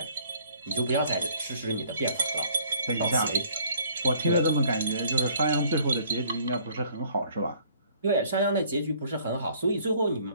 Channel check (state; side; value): inverted; both; correlation -0.59